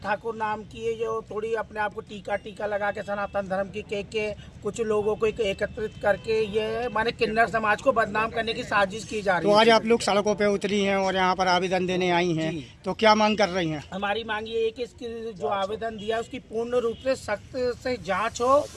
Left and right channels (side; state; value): both; identical; correlation 1.00